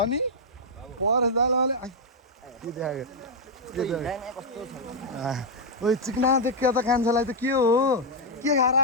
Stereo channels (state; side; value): normal; both; correlation -0.02